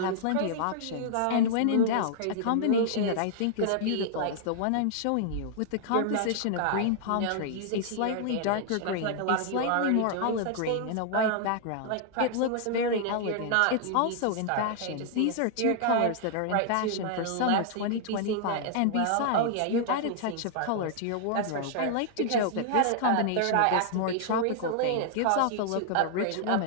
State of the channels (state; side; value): different; both; correlation -0.01